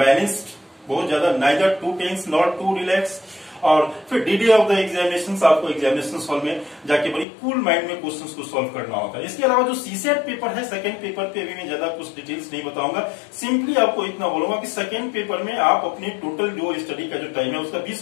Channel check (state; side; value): drops out; right; at 7.2 s